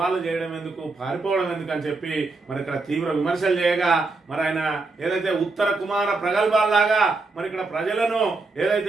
చేయడం ఎందుకు, పారిపోవడం ఎందుకు అని చెప్పి మరి ఇక్కడ తీవ్ర విమర్శలు చేయగా మరి ఆయన ఏదైతే ఉత్తర కుమార ప్రగల్భాల్లాగా మరి ఇక్కడ ప్రజలను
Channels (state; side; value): quieter; left; 3.6 dB